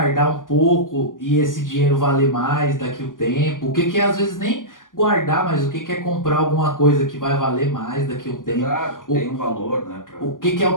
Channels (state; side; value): late; right; 0.89 ms